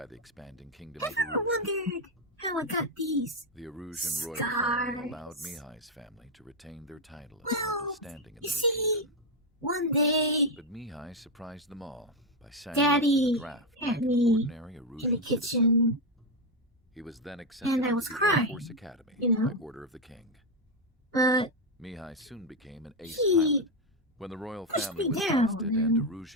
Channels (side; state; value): both; normal; correlation 0.05